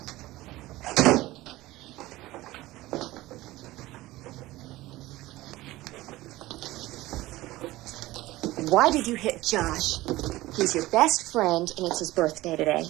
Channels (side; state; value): left; quieter; 18.0 dB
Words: Why did you hit Josh? He's your best friend, and it's his birthday today.